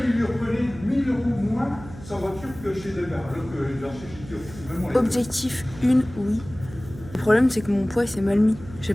il lui reprenait 1000 € moins sa voiture que chez Delgar, alors que j'ai acheté chez Kyo. Objectif 1, oui. problème, c'est que mon poids s'est mal mis. J'ai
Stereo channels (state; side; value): noise; right; hum, 16 dB below the sound